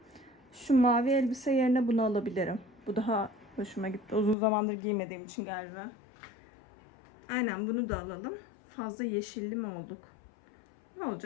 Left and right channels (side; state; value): right; drops out; at 4.4 s